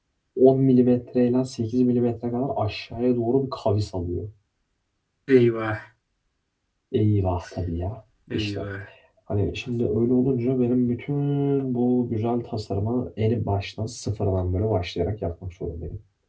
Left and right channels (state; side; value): identical; both; correlation 1.00